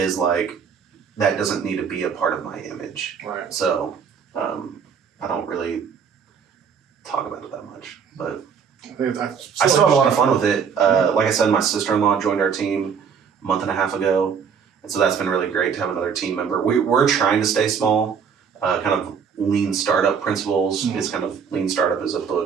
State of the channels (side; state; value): left; quieter; 6.7 dB